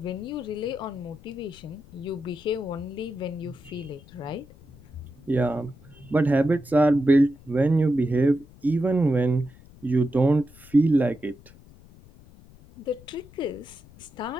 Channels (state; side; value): noise; left; rumble, 23 dB below the sound